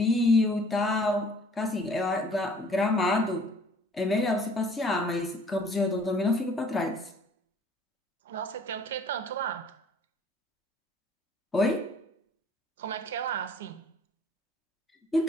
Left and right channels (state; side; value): normal; both; correlation 0.56